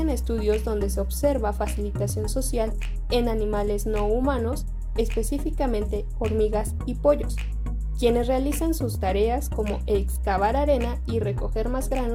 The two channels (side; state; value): both; identical; correlation 1.00